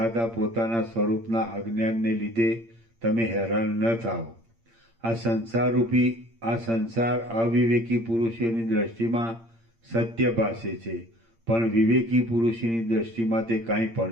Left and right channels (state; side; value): late; left; 8.7 ms